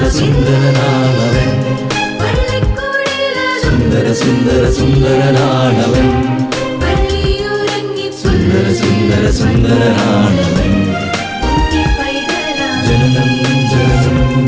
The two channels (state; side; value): identical; both; correlation 1.00